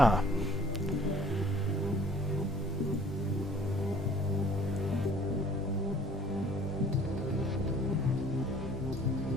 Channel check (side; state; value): both; normal; correlation 0.55